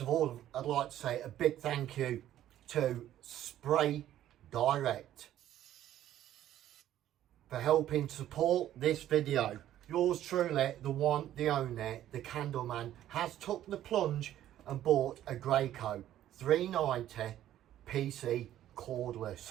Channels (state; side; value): quieter; left; 12.3 dB